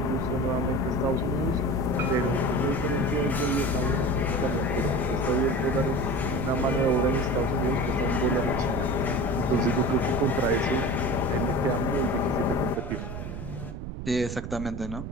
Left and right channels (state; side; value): noise; right; rumble, 7 dB below the sound